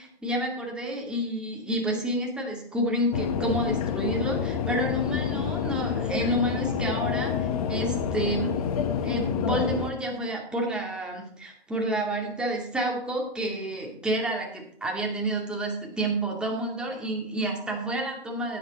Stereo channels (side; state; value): both; normal; correlation 0.04